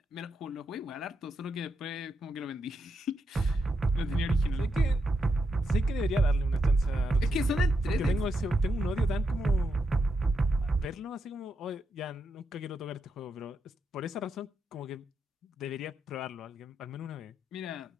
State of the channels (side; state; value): both; normal; correlation 0.83